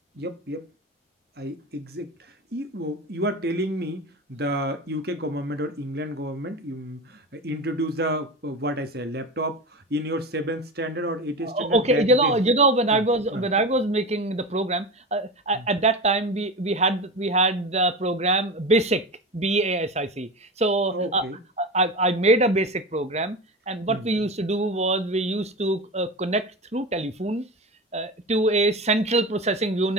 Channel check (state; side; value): normal; both; correlation 0.25